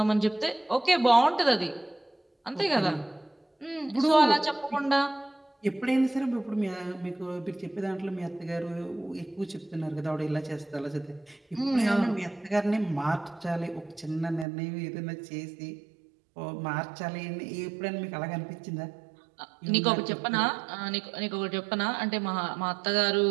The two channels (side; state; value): left; drops out; at 14.5 s